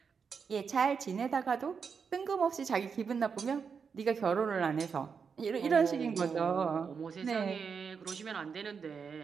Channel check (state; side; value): quieter; left; 6.0 dB